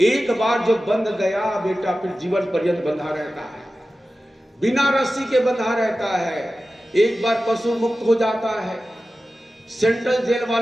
एक बार जो बंध गया बेटा फिर जीवन पर्यंत बंधा रहता है, बिना रस्सी के बंधा रहता है। एक बार पशु मुक्त हो जाता है। सेंट्रल जेल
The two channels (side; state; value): both; normal; correlation 0.94